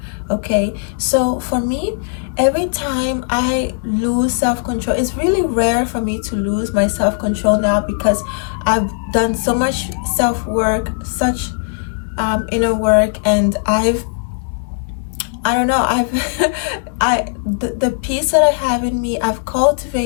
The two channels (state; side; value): silent; right; 68 dB below the other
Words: Okay, so for me, every time I lose self-control, it's really rare for me to lose my self-control now, because I've done so much self-work, such inner work, and the peace that I have in me, I've